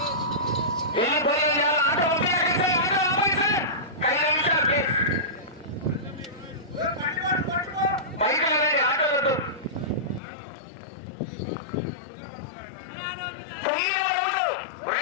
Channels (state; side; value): drops out; right; at 10.2 s